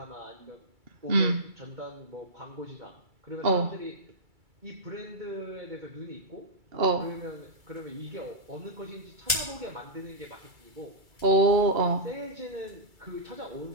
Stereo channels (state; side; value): late; left; 2.3 ms